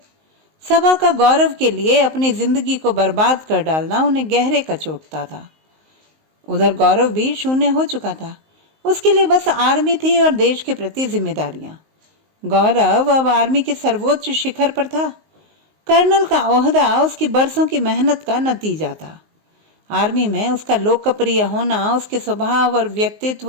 सबा का गौरव के लिए अपनी जिंदगी को बर्बाद कर डालना उन्हें गहरे कचोटता था। उधर गौरव भी शून्य हो चुका था। उसके लिए बस आर्मी थी और देश के प्रति जिम्मेदारियां। गौरव अब आर्मी के सर्वोच्च शिखर पर था। कर्नल का ओहदा उसकी बरसों की मेहनत का नतीजा था। आर्मी में उसका लोकप्रिय होना उसके स्वभाव और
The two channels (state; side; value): late; left; 19 ms